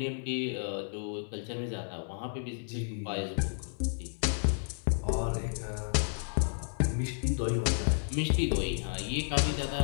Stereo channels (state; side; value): silent; right; digital silence